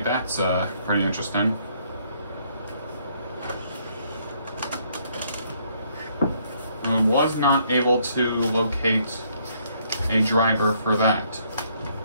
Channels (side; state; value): both; inverted; correlation -0.68